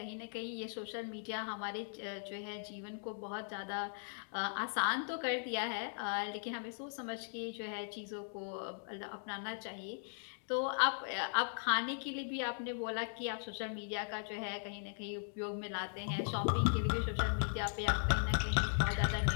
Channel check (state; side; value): silent; right; digital silence